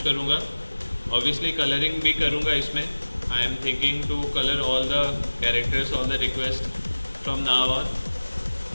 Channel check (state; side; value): inverted; both; correlation -1.00